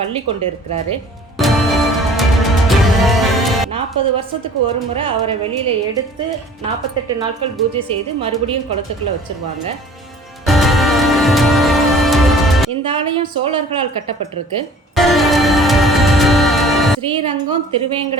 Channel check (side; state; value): both; normal; correlation 0.49